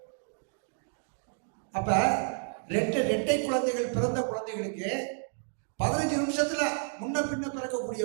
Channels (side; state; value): left; silent; digital silence